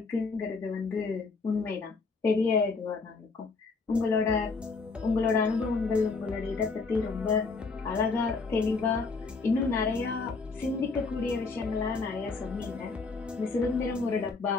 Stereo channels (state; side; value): quieter; right; 4.2 dB